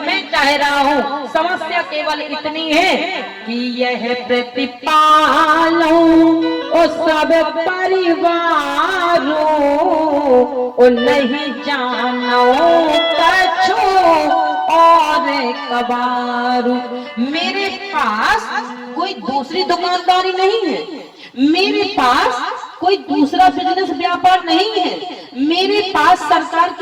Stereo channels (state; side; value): identical; both; correlation 1.00